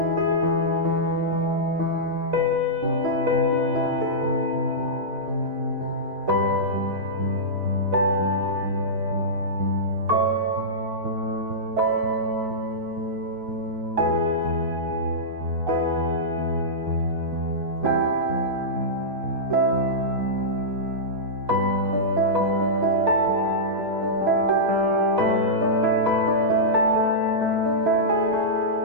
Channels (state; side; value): late; left; 4.6 ms